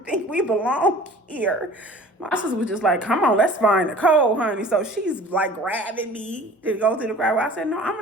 think we belong here. My sister was just like, come on, let's find Nicole, honey. So she's like grabbing me to go to the crowd. I said, no, I'm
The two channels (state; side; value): normal; both; correlation 0.45